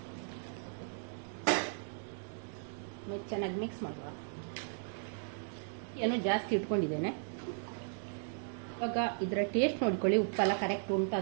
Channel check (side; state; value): left; silent; digital silence